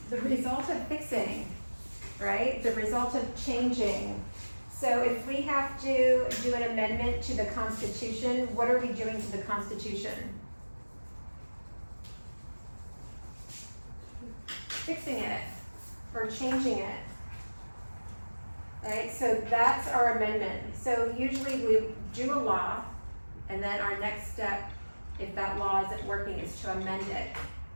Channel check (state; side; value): inverted; both; correlation -1.00